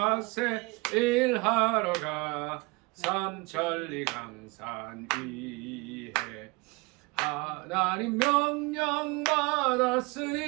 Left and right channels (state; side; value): quieter; left; 26.2 dB